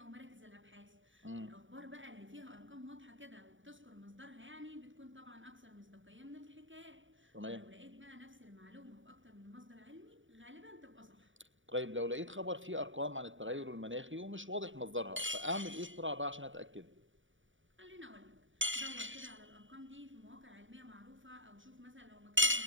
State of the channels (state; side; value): late; left; 0.56 ms